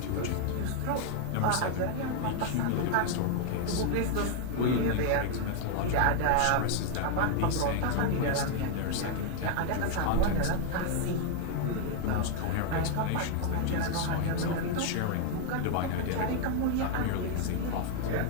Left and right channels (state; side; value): different; both; correlation 0.00